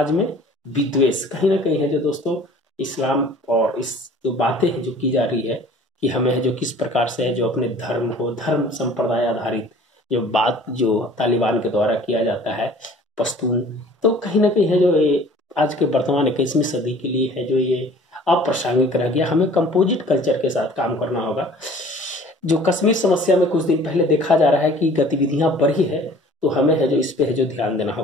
में विद्वेष, कहीं ना कहीं है जो दोस्तों इस्लाम और इस जो बातें हैं जो की जा रही है कि हमें है जो किस प्रकार से है जो अपने धर्म को, धर्म संप्रदाय आधारित जो बात जो तालिबान के द्वारा किया जाता है, पश्तून, तो कहीं ना कहीं है जो ये आज के वर्तमान 21वीं सदी के लिए है जो ये अप्रासंगिक रह गया। हमें कंपोजिट कल्चर के साथ काम करना होगा। जो कश्मीर समस्या में कुछ दिन पहले देखा जा रहा है कि गतिविधियां बढ़ी है, तो हमें है जो इस पे है जो ध्यान देना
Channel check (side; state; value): both; normal; correlation 0.49